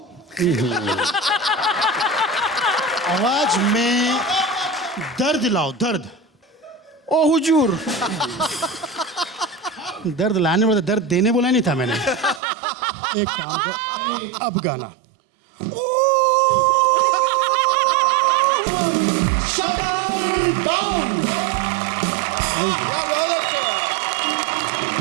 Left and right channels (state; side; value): drops out; left; at 12.4 s